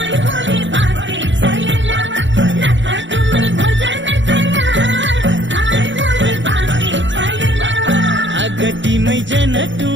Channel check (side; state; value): left; late; 0.54 ms